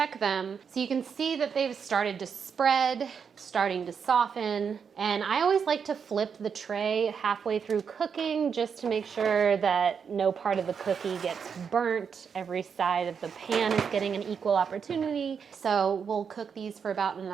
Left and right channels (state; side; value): quieter; left; 6.6 dB